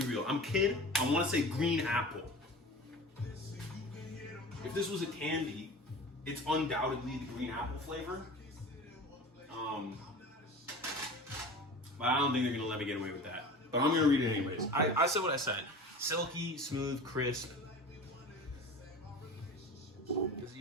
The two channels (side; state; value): both; normal; correlation 0.36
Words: real. I'm kid, I wanna say green apple. If this was a candy, it's undoubtedly the green apple flavor. But I don't think they're gonna let me get away with that. But I'm gonna read it anyways. I said what I said. Silky, smooth, crisp. Does it